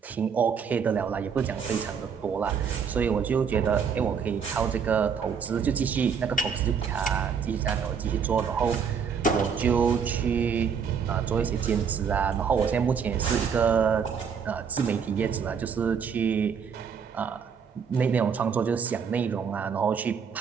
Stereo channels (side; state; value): left; quieter; 6.6 dB